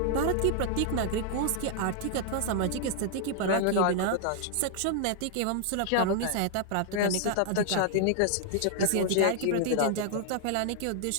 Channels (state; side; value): different; both; correlation -0.01